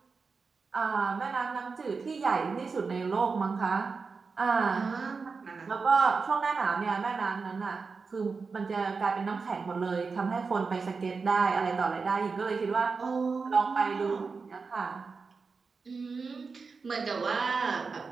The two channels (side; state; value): left; quieter; 4.7 dB